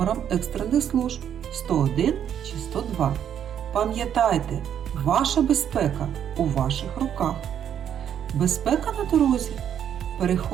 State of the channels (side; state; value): left; quieter; 9.3 dB